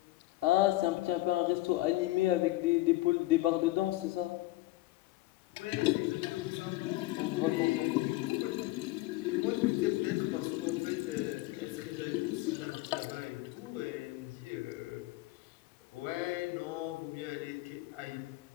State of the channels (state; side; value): quieter; right; 18.4 dB